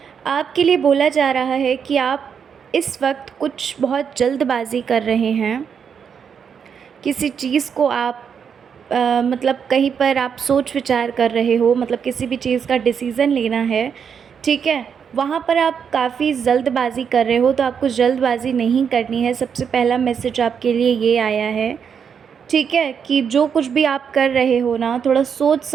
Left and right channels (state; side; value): quieter; left; 7.1 dB